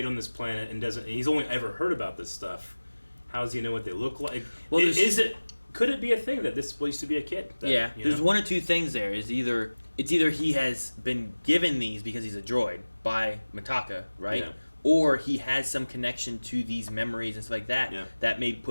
on this planet and he's only ever heard about this stuff, how does he know what they look like? Well, Is it? could it be a thing that this used to be a kid? That, Yeah, you there's know? one or two things there. It's either he has been given these because he's a droid by Mitaka, right? Yeah. Or he has some connection to these memories and stuff like that Yeah. that may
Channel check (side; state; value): both; inverted; correlation -1.00